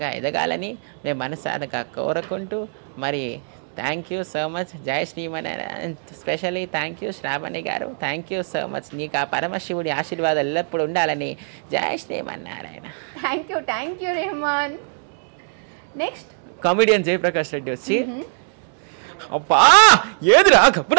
ఎదగాలని మేము మనసారా కోరుకుంటూ మరి థ్యాంక్ యూ సో మచ్. జై Shrimannarayana. Specially thank you Shravani గారు. Thank you so much. నీకు ఆ పరమశివుడి ఆశీర్వాదాలు ఎల్లప్పుడు ఉండాలని. జై Shrimannarayana. Thank you Rahman. Next comedian Jayaprakash Reddy వచ్చి అబ్బా ఏదిరా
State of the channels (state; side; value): silent; left; digital silence